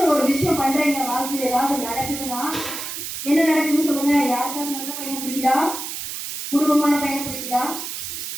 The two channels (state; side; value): noise; right; hiss, 6 dB below the sound